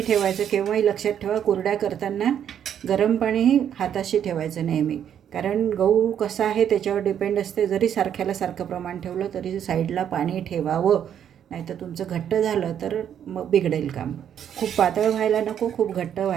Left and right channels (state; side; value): quieter; left; 9.3 dB